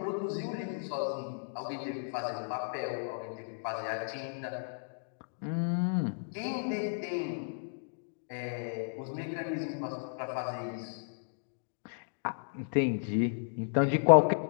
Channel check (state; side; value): silent; right; digital silence